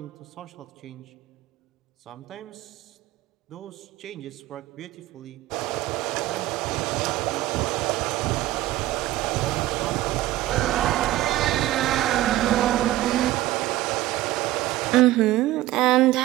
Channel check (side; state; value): left; quieter; 15.7 dB